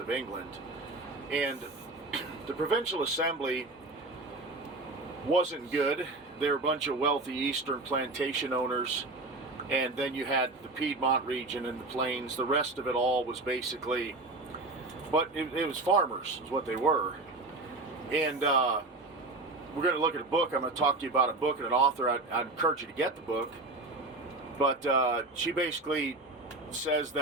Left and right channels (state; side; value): quieter; left; 3.1 dB